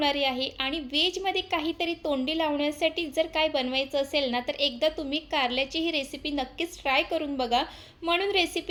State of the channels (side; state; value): both; identical; correlation 1.00